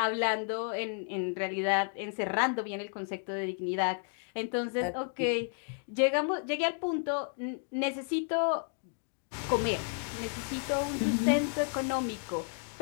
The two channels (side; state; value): right; silent; 56 dB below the other